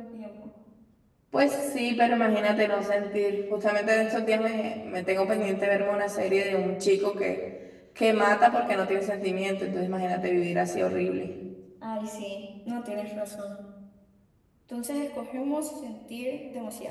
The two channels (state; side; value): identical; both; correlation 1.00